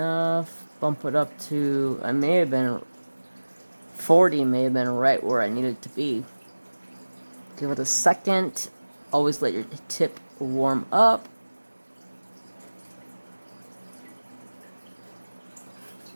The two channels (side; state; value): both; inverted; correlation -1.00